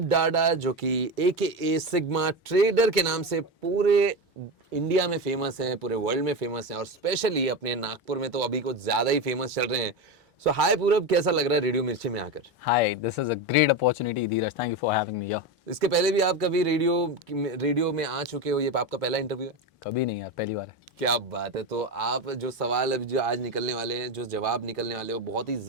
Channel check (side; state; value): both; normal; correlation 0.18